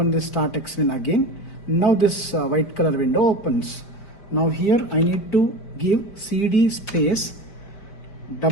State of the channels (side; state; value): right; late; 5.1 ms